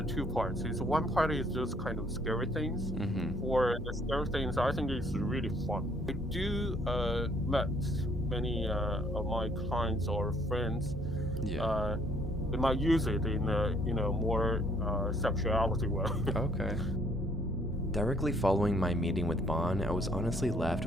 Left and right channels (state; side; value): normal; both; correlation 0.63